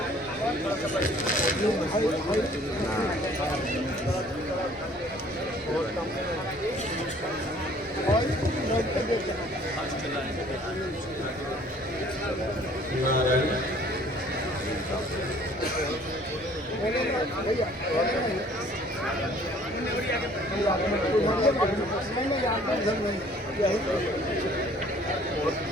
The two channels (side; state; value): both; normal; correlation 0.55